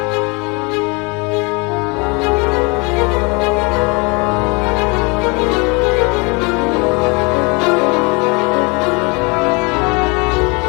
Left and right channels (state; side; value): quieter; right; 29.7 dB